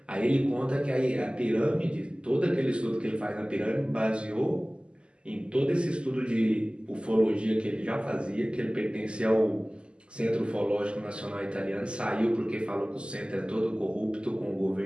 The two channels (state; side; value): late; left; 0.051 ms